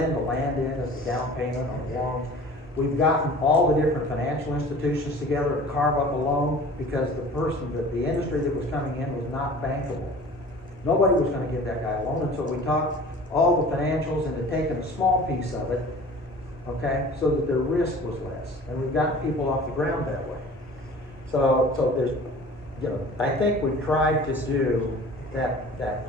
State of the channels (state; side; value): normal; both; correlation 0.43